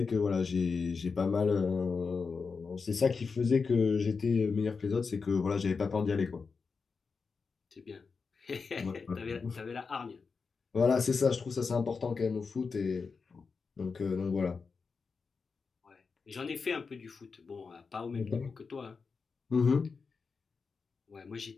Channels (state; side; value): quieter; right; 5.0 dB